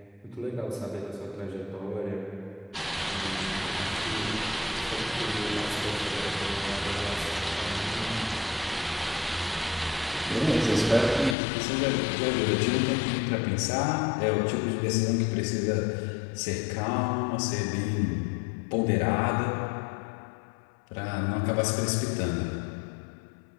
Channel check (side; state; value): right; drops out; at 11.4 s